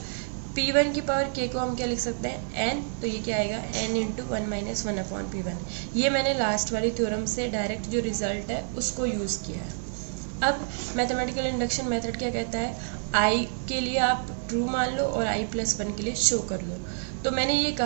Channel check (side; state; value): left; silent; digital silence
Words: p1 की पावर k को हम क्या लिख सकते हैं, n, तो ये क्या आएगा n into 1 minus 1 upon p1। ये मैंने लास्ट वाली थ्योरम से डायरेक्ट जो रिजल्ट है उसको यूज़ किया है। अब मैथमेटिकल इंडक्शन मेथड क्या कहता है, i के लिए आप ट्रू मान लो और i प्लस 1 के लिए शो कर लो। तो मैंने ये